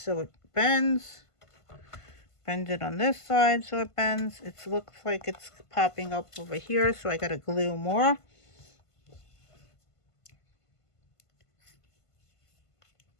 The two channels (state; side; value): late; right; 1.5 ms